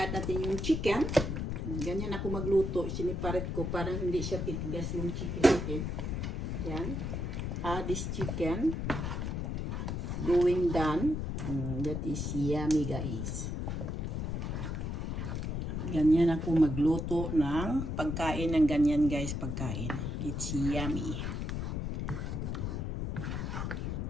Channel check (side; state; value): left; noise; rumble, 2 dB below the sound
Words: natin yung chicken. Ganyan ako magluto. Siniparet ko parang hindi siya titigas yung chicken natin. Yan. This chicken going done. That is yummy, guys. Ganyan ako magluto ng pagkain ng ganyan, guys. Pagkain. It's yummy.